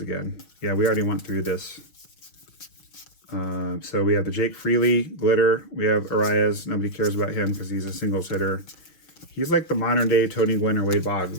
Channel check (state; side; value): late; right; 6.2 ms